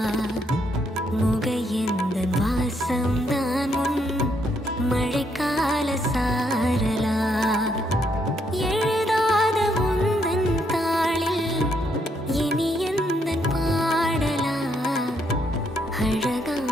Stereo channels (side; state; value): both; normal; correlation 0.74